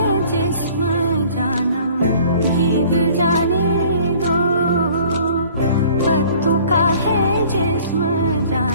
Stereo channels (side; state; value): both; inverted; correlation -0.52